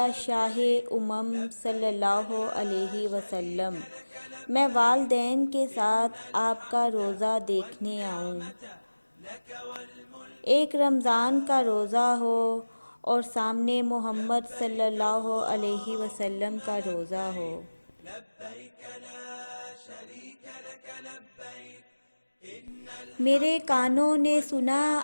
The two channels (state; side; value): inverted; both; correlation -1.00